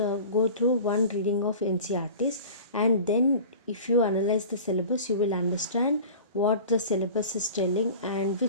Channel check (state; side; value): inverted; both; correlation -0.39